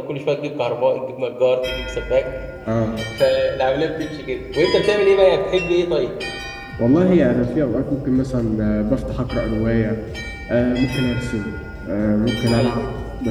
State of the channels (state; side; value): identical; both; correlation 1.00